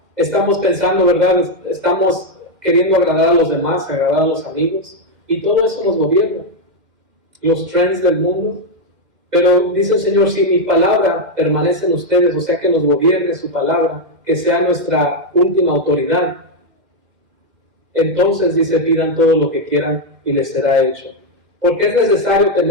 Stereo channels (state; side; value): late; left; 2.1 ms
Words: estamos pensando, ¿verdad? Estamos queriendo agradar a los demás, agradar a los amigos, y todo eso nos gobierna. Los trends del mundo. Pero dice el Señor, si mi palabra permanece en ustedes, o sea que nos gobierne su palabra, que sea nuestra última autoridad, entonces dice, pidan todo lo que quieran y les será hecho. Porque es necesario